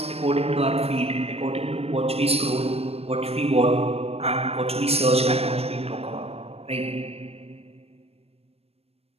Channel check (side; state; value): left; late; 0.29 ms